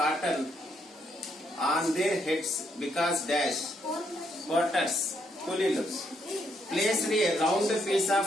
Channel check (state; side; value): normal; both; correlation 0.75